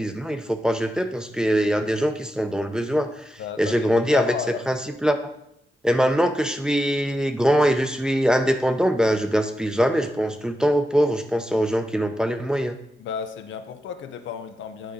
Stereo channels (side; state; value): both; normal; correlation 0.88